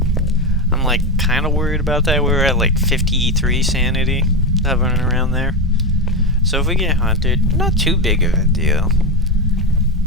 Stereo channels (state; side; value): normal; both; correlation 0.13